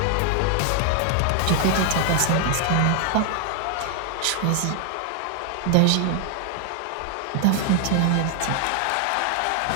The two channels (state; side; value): different; both; correlation 0.00